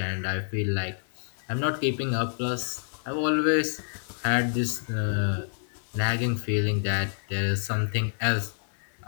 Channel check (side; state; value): right; silent; digital silence